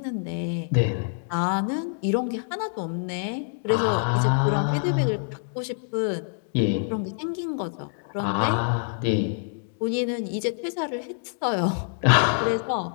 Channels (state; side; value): silent; right; digital silence